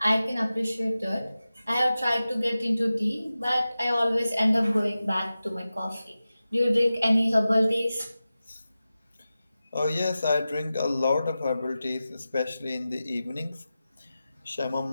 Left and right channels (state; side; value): inverted; both; correlation -0.94